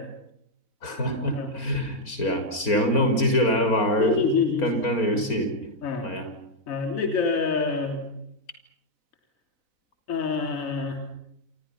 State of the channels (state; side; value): late; right; 4.4 ms